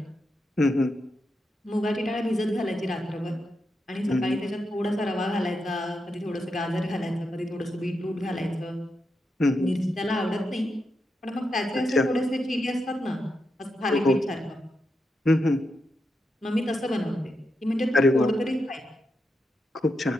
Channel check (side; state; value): both; normal; correlation 0.85